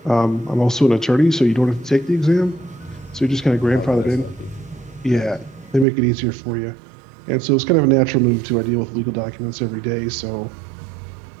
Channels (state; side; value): drops out; left; at 5.9 s